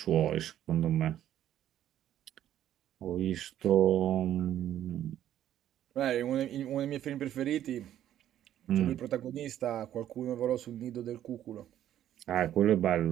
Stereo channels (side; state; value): left; quieter; 11.5 dB